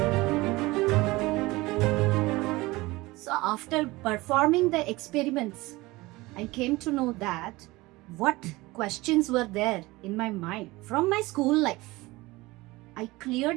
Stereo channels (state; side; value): quieter; left; 20.9 dB